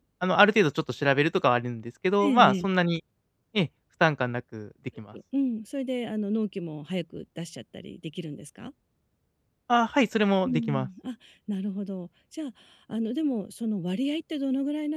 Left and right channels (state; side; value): identical; both; correlation 1.00